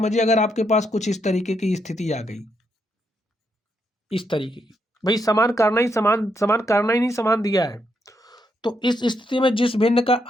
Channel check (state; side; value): normal; both; correlation 0.79